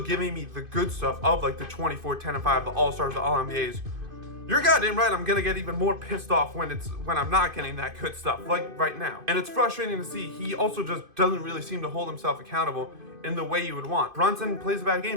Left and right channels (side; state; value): left; late; 2.5 ms